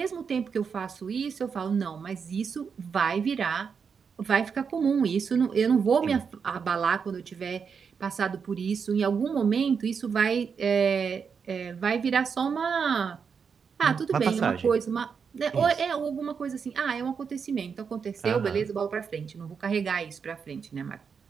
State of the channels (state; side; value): quieter; left; 6.2 dB